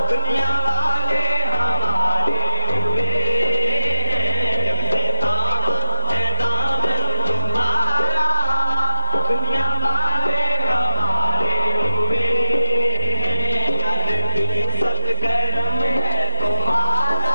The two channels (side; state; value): both; inverted; correlation -1.00